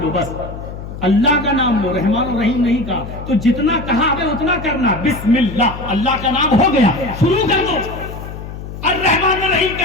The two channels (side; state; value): left; noise; hum, 10 dB below the sound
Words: لو, بس اللہ کا نام لو, رحمان الرحیم نہیں کہا. تو جتنا کہا ہمیں اتنا کرنا. بسم اللہ, اللہ کا نام ہو گیا, شروع کر دو. الرحمن الرحیم